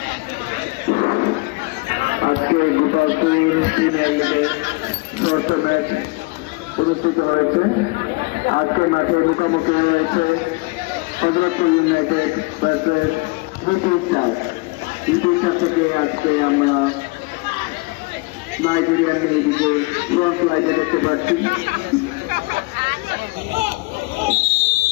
আজকে গোপালপুর ম্যাচ অনুষ্ঠিত হয়েছে। আজকে মাঠে মুখোমুখি হয়েছে হযরতপুর ইউনাইটেড ভার্সেস দ্বিতীয় থেকে আজকে আমরা নাইজেরিয়ান মেয়েদিকে ফ্রন্ট লাইনে দেখতে পাচ্ছি।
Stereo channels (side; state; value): right; quieter; 26.6 dB